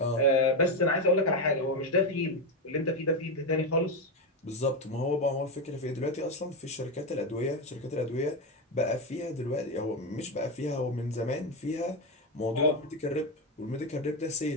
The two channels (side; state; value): both; normal; correlation 0.11